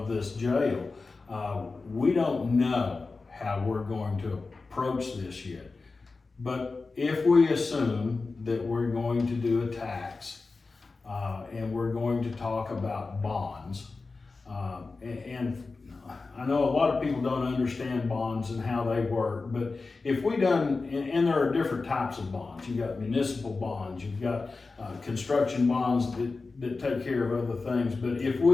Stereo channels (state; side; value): quieter; right; 3.9 dB